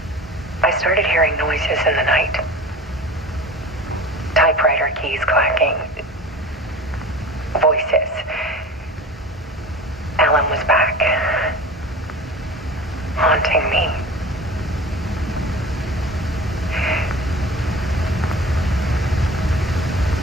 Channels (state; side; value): normal; both; correlation 0.38